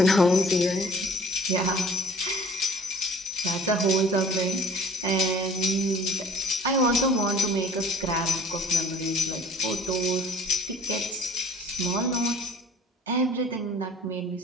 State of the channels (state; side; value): normal; both; correlation 0.50